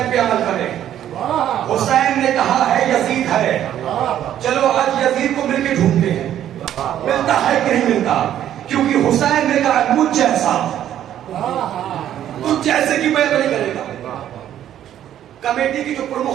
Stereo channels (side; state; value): left; quieter; 11.1 dB